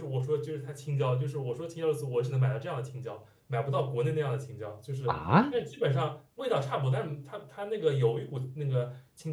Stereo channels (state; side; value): identical; both; correlation 1.00